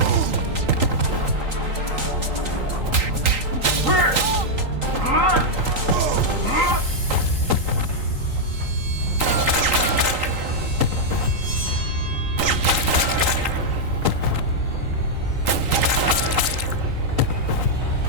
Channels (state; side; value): late; left; 3.8 ms